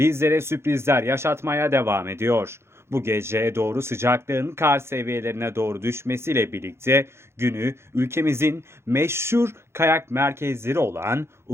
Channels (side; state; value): left; late; 0.12 ms